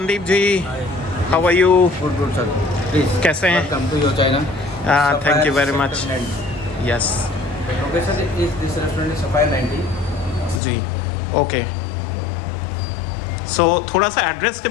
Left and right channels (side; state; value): right; drops out; at 10.6 s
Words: ji, how are you? Good sir, please कैसे हैं? Welcome to your China. Thank you very much. Yes, location is this restaurant is Sapphire 90 जी, okay. So थोड़ा सा एड्रेस के